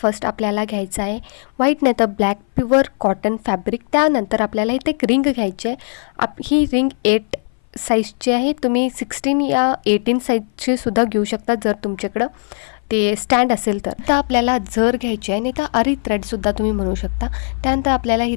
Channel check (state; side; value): silent; right; 59 dB below the other